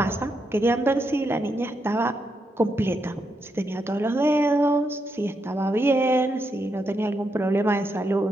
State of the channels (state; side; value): normal; both; correlation 0.82